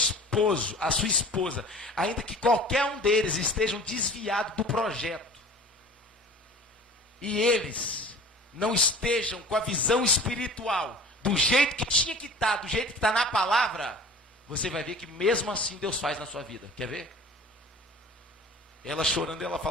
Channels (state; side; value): normal; both; correlation 0.42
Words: a sua esposa, ainda que qualquer um deles estejam desviados do projeto, e eles não estejam com a visão espiritual, do jeito que tinha que estar, do jeito que está na palavra, você vai ver que mesmo assim Deus faz na sua vida. Quer ver? Ela chorando, ela